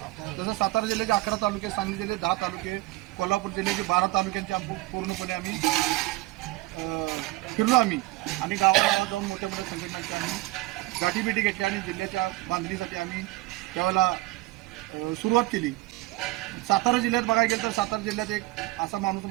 जसं सातारा जिल्ह्याचे 11 तालुके, सांगली जिल्ह्याचे 10 तालुके, कोल्हापूर जिल्ह्याचे 12 तालुक्यांचे पूर्णपणे आम्ही फिरलो आम्ही आणि गावागावात जाऊन मोठ्या मोठ्या संघटनांची आम्ही गाठीभेटी घेतली आणि जिल्ह्याच्या बांधणीसाठी आम्ही त्यावेळेला सुरुवात केली. सातारा जिल्ह्यात बघायला गेलं तर सातारा जिल्ह्यात एक असा माणूस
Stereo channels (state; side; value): quieter; left; 19.3 dB